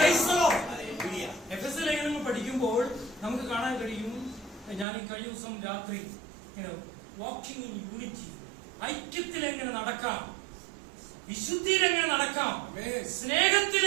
എഫെസ്യ ലേഖനം പഠിക്കുമ്പോൾ നമുക്ക് കാണാൻ കഴിയും, ഞാൻ ഈ കഴിഞ്ഞ ദിവസം രാത്രി വാക്കിംഗ് ഇൻ യൂണിറ്റി, ഐക്യത്തിൽ എങ്ങനെ നടക്കാം, വിശുദ്ധിയിൽ എങ്ങനെ നടക്കാം, സ്നേഹത്തിൽ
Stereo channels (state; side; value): drops out; left; at 4.9 s